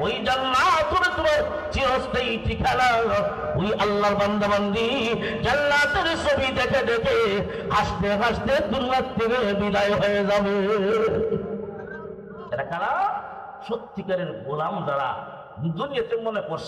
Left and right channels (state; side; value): identical; both; correlation 1.00